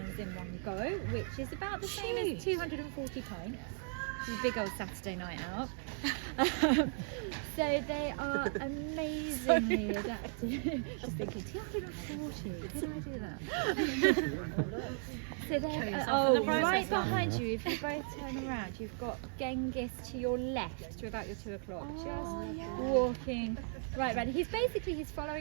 in one go, which is about the same as 240 pints. It's a big old Saturday night out. So they are amazingly adapted. Just thinking, 240, did I do that? So they're right behind you. If you both turn around, you've got Genghis to your left to about your 2 o'clock, walking right around. He's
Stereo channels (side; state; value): left; silent; 54 dB below the other